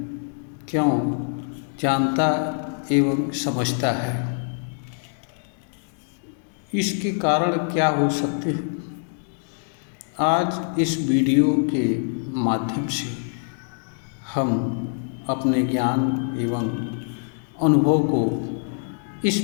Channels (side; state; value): right; silent; 62 dB below the other